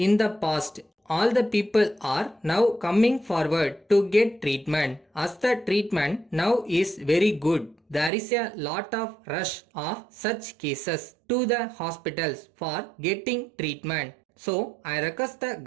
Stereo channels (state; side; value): drops out; left; at 8.1 s